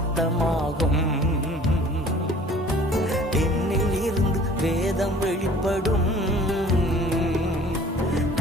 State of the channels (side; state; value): both; normal; correlation 0.50